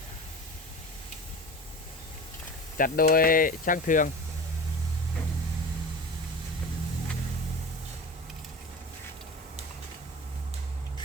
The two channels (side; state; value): both; normal; correlation 0.33